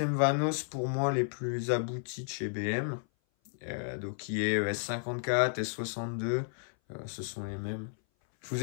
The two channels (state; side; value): silent; right; 56 dB below the other